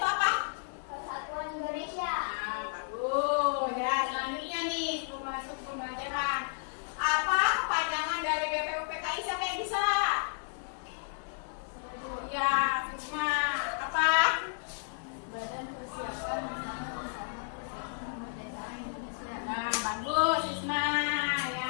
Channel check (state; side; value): silent; right; 56 dB below the other